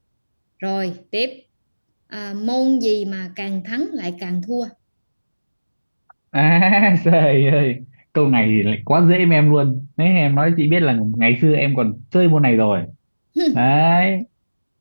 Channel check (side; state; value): both; inverted; correlation -1.00